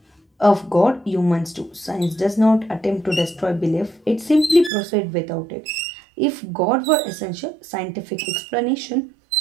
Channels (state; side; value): drops out; left; at 4.7 s